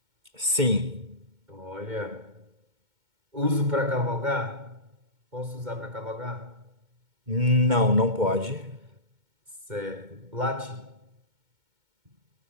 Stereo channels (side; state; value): left; late; 2.2 ms